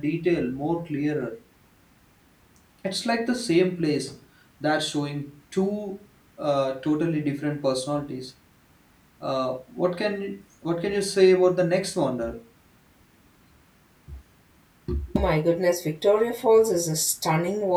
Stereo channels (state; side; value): identical; both; correlation 1.00